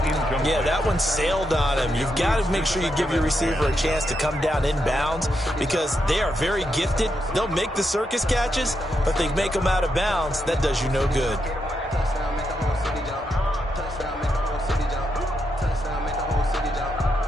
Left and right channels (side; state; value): both; normal; correlation 0.82